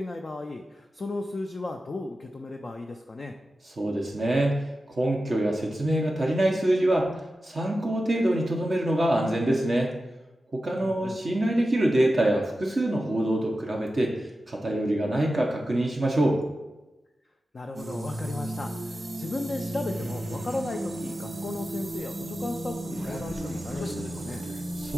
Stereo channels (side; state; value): both; normal; correlation 0.93